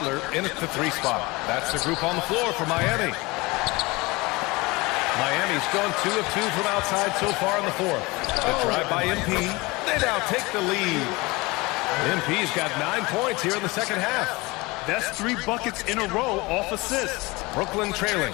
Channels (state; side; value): quieter; right; 23.5 dB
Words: in at the 3 spot. That's the group on the floor for Miami. Miami's gone 2 of 2 from outside so far in the fourth. The drive by MP. They now take the lead. MP's got 9 points here in the second half. That's 3 buckets in a row off assists. Brooklyn trailing.